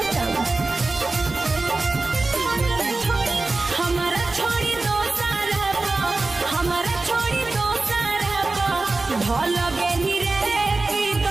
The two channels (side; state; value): left; quieter; 3.4 dB